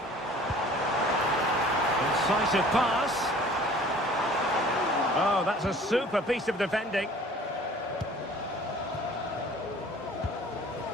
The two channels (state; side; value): normal; both; correlation 0.49